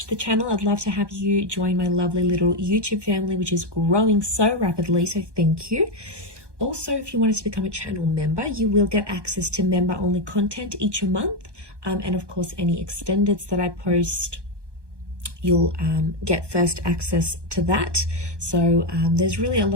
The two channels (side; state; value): left; late; 1.2 ms